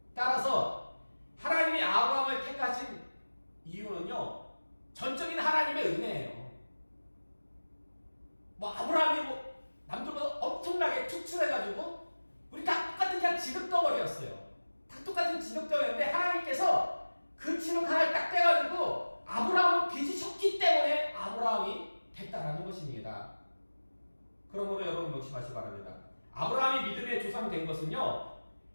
따라서 하나님이 아브라함을 택하신 이유는요. 전적인 하나님의 은혜예요. 아브라함이 남들보다 엄청나게 투출해가지고 우리 다 똑같은 그냥 진흙덩어리였어요. 다 똑같은 진흙덩어리였는데 하나님께서 그 진흙 하나를 딱 떼가지고 아브라함을 빚으셨기 때문에 아브라함이 됐다라는 것입니다. 그러므로 여러분 명심하시기 바랍니다. 아브라함이 믿음의 조상 된 것은요.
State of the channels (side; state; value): both; inverted; correlation -1.00